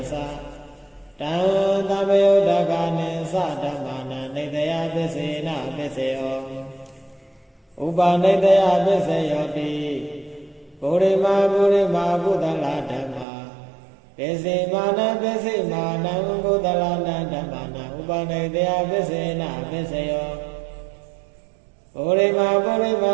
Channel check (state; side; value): drops out; left; at 13.2 s